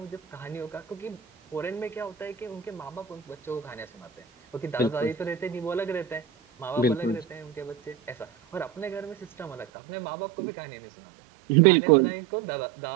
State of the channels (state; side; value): drops out; left; at 9.7 s